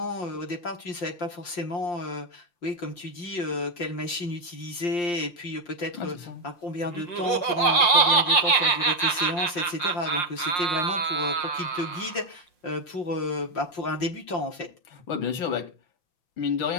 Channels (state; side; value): late; right; 5.6 ms